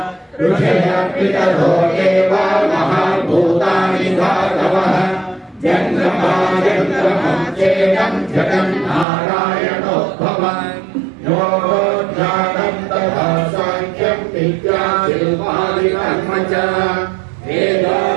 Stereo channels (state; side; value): drops out; left; at 9.1 s